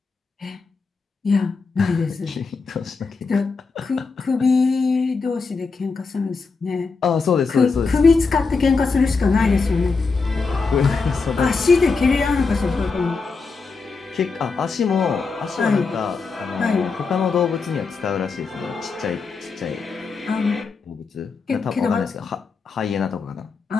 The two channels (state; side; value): quieter; right; 4.6 dB